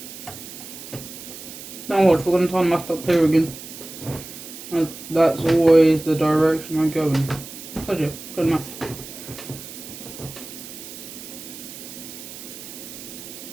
Now watch, we're going to turn my stuff here again. That's always the direction I go in. Told you, good enough.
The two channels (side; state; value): right; noise; hiss, 13 dB below the sound